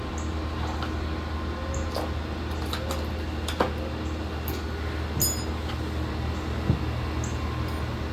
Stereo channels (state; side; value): identical; both; correlation 1.00